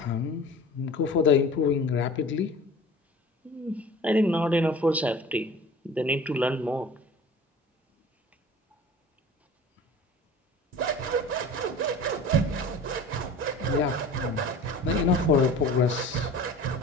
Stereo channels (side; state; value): both; normal; correlation 0.41